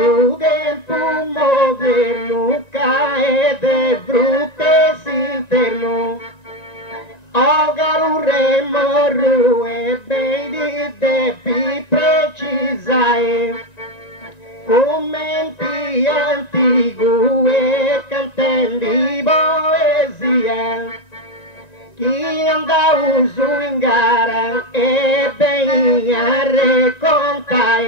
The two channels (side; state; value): right; late; 1.9 ms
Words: tempo moderno cae de brute s'interno o garurre morru e beidi de pi precisae commenti antigu e cantendi poesia chi andau su in gara e ben a